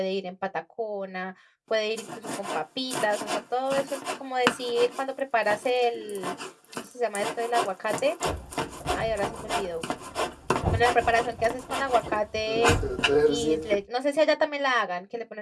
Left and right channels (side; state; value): both; identical; correlation 1.00